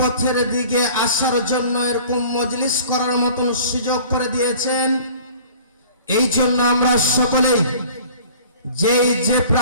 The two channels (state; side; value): inverted; both; correlation -0.48